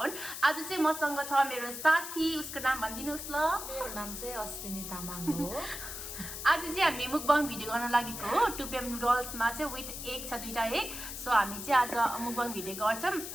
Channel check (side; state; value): left; noise; hiss, 8 dB below the sound